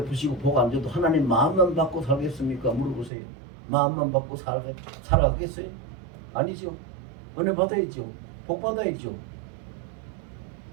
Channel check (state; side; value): drops out; left; at 3.1 s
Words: 복 안 줘도 하나님 마음만 받고 살겠습니까? 물어보세요. 마음만 받고 살아가겠어요? 아니죠. 은혜 받아야죠. 복 받아야죠.